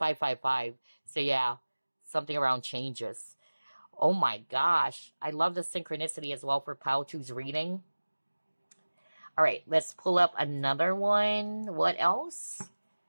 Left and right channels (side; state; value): both; inverted; correlation -1.00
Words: So yeah, something around changes. Oh my gosh. I love the synchronicity as well for Pile 2's reading. All right, let's pull up another one. What else?